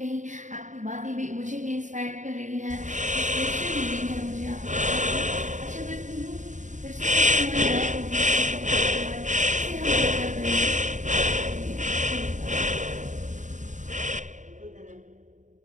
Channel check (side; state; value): left; late; 0.36 ms